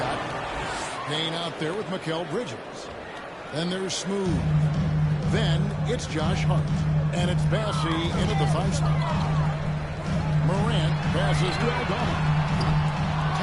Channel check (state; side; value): identical; both; correlation 1.00